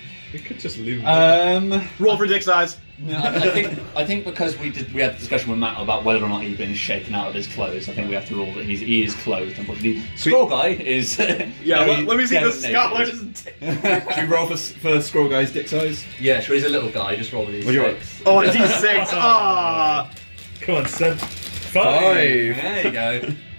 We could just leave Roll for dick size. No, I think because we had the discussion with Matt about whether or not he'd been shaken out of his clothes. I think we have to rule that he is clothed. Unfortunately, Scroll Guy is. Yeah, let me see the dead scholars. Should we roll for Scroll Guy's dick size? Yeah, sure. He's a little guy. Just roll these. What do you six. Oh, a D6. Ah, Come on, Seb. 5. There you go.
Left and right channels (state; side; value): inverted; both; correlation -1.00